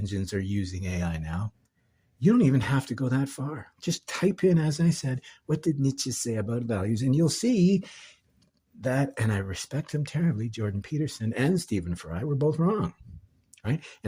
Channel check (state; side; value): identical; both; correlation 1.00